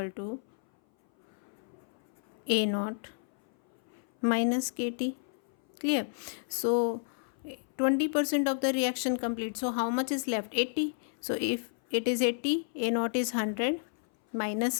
to A naught minus KT. Clear? So 20% of the reaction complete. So how much is left? 80. So if it is 80, A naught is 100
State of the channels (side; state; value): right; silent; 57 dB below the other